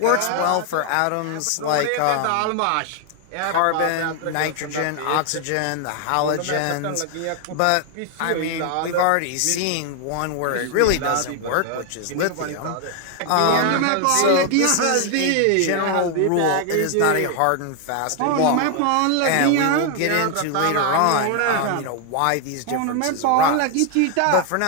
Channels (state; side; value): different; both; correlation 0.00